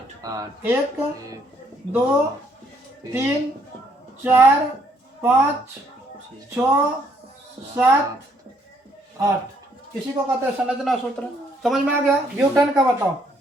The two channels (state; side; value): normal; both; correlation 0.68